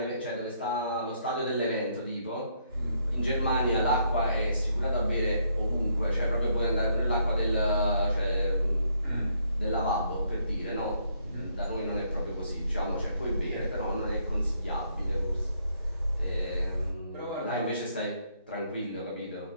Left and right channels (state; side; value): inverted; both; correlation -0.71